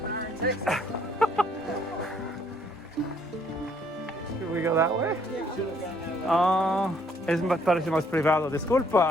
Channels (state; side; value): normal; both; correlation 0.65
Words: there are in Texas. Should we go that way? Yeah. Should have gone that way. Es parece más privado,